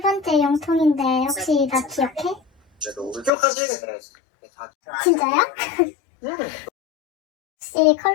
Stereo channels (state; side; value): drops out; right; at 3.3 s